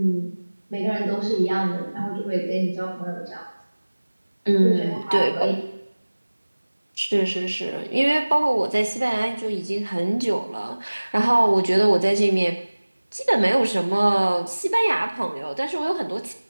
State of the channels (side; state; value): both; inverted; correlation -1.00